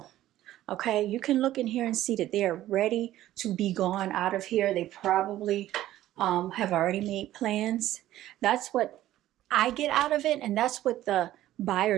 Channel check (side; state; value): left; quieter; 14.0 dB